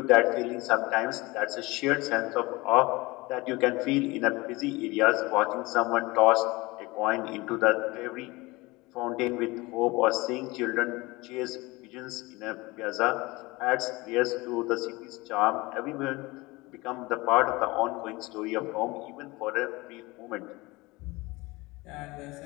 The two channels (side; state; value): right; quieter; 22.5 dB